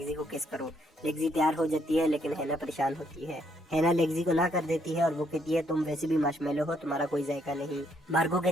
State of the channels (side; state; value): both; normal; correlation 0.71